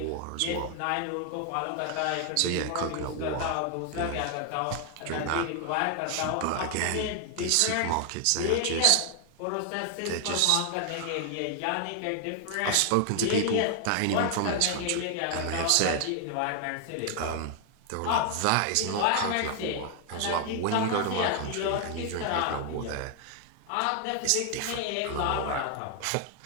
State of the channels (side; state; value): both; different; correlation 0.00